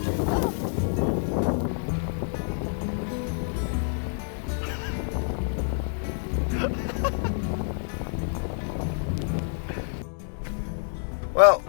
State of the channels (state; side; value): silent; right; 60 dB below the other